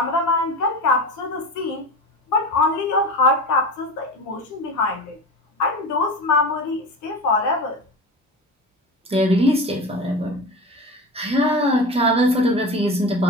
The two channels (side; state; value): both; normal; correlation 0.28